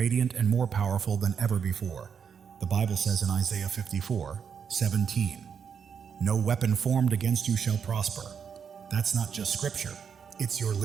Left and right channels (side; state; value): left; quieter; 7.0 dB